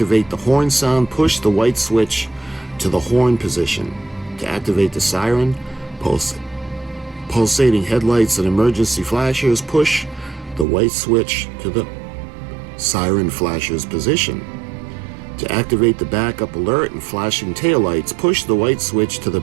the horn sound. Push the white switch to the horn position. To activate the siren, pulsating headlights and emergency flashers, push the white switch to the siren flasher's position. To activate the backup alert and flashing taillights, push the white switch to the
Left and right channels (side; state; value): left; drops out; at 10.7 s